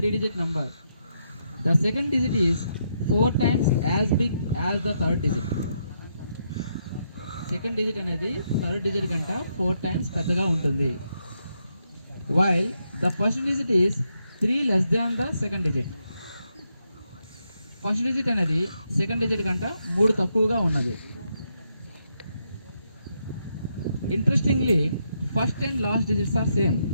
number. The second digit is 4 times as big as the third digit. Second digit అనేది third digit కంటే 4 times పెద్దగా ఉంటుంది. While the first digit is 3 less than the second digit. First digit అనేది second digit కంటే 3 తక్కువగా ఉన్నది. Interestingly first and last digits are same.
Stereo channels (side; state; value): both; inverted; correlation -0.79